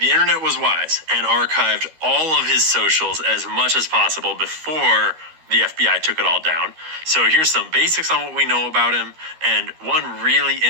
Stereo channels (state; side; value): late; left; 13 ms